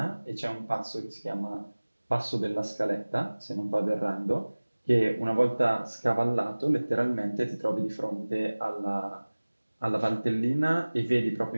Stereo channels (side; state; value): both; inverted; correlation -1.00